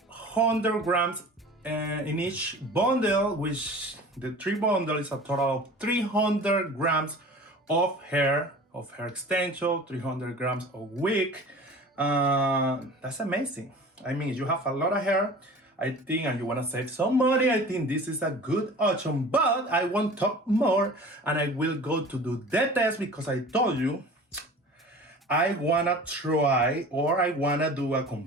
100 grams in each bundle, which the 3 bundle is a total of 300 grams of hair extension, 300 grams of wig. That's amazing. I mean, you have a lot of hair, I think, and you want to save some money, I think this is a good option. But I won't talk more, and I will go to do the test, because I told you I wanna try, or I wanna do a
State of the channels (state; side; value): normal; both; correlation 0.41